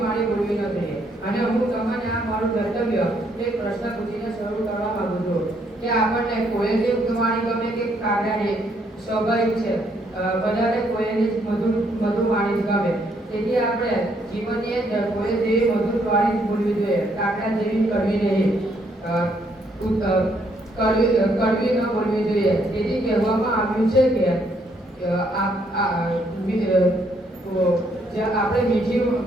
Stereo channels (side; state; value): both; normal; correlation 0.71